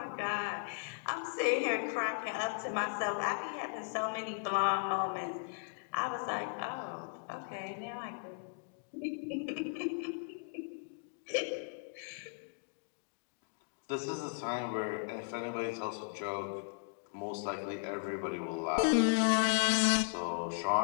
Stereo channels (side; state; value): right; silent; digital silence